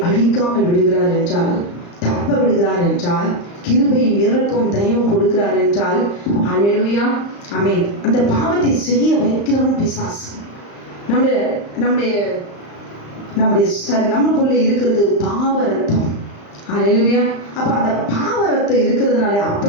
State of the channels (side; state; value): right; late; 35 ms